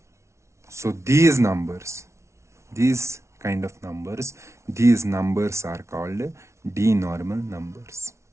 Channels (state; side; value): late; left; 0.13 ms